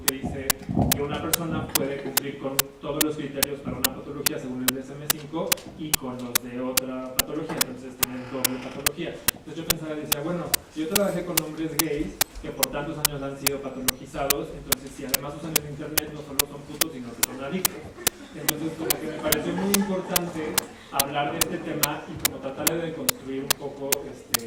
que dice que una persona puede cumplir con todos los criterios para una patología según el DSM-5 y con los de otra patología, entonces tienen doble patología. Entonces yo pensaba y decía, bueno, yo trabajé con hombres gays que por tantos años han sido patologizados, entonces si además usan el internet no solo son putos, sino que son adictos. Entonces como que me pareció muy importante hablar de este tema y como tratar de deconstruir un poco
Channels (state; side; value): identical; both; correlation 1.00